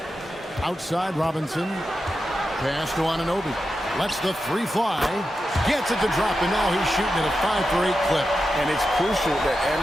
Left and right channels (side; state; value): both; normal; correlation 0.89